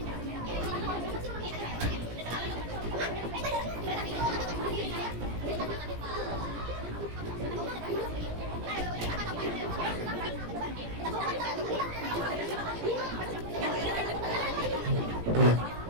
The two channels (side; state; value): left; late; 17 ms